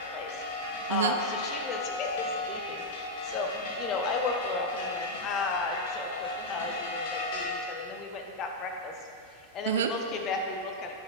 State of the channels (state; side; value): normal; both; correlation -0.02